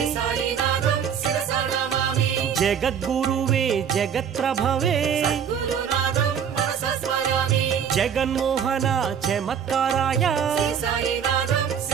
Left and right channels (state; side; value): quieter; left; 7.9 dB